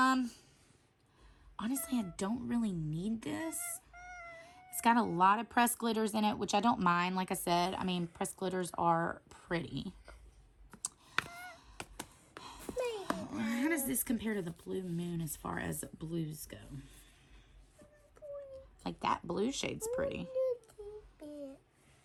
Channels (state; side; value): identical; both; correlation 1.00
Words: I don't really need this. It's got a lot of pressed glitters in it, which I don't mind. Like I said, I mean, pressed glitters are pretty. How does this compare to the Blue Moon as far as blues go? Like that blue shade's pretty.